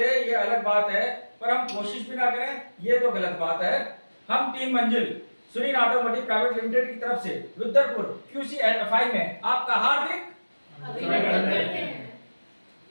ये अलग बात है, पर हम कोशिश भी ना करें ये तो गलत बात है। हम टीम मंजिल सुनील ऑटोमोटिव प्राइवेट लिमिटेड की तरफ से रुद्रपुर QC एंड FI में आपका हार्दिक अभिनंदन करते हैं।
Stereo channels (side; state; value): both; inverted; correlation -1.00